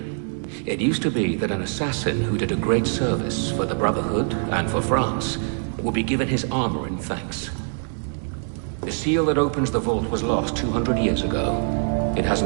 It used to be that an assassin who did a great service for the Brotherhood and for France would be given his armor in thanks. The seal that opens the vault was lost 200 years ago. It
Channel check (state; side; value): silent; left; 57 dB below the other